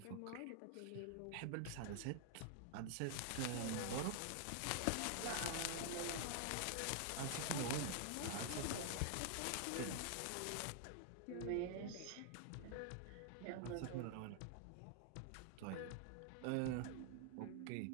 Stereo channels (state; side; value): different; both; correlation 0.00